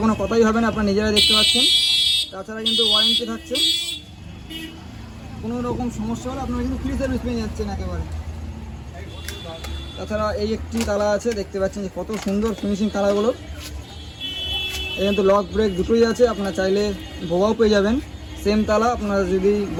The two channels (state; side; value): identical; both; correlation 1.00